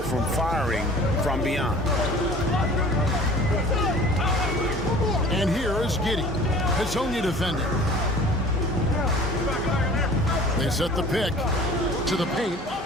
from firing from beyond. And here is Giddey. Hezonja defending. They set the pick to the paint.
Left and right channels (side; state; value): both; normal; correlation 0.46